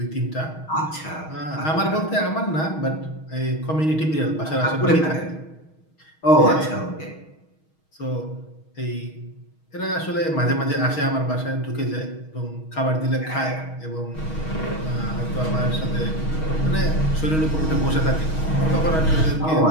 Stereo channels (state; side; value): late; right; 6.3 ms